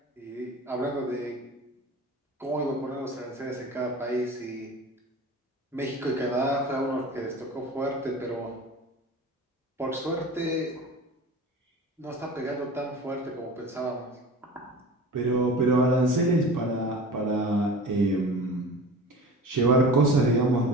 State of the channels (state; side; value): normal; both; correlation 0.37